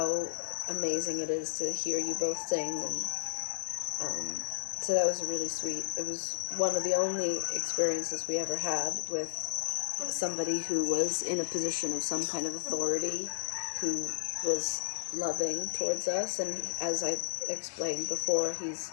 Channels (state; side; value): silent; right; digital silence